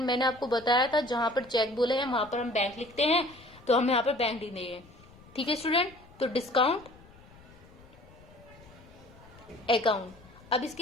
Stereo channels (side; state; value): left; noise; rumble, 23 dB below the sound